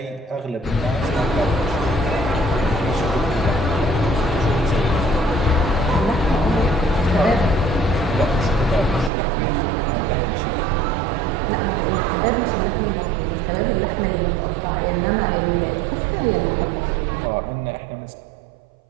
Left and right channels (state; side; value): drops out; left; at 9.1 s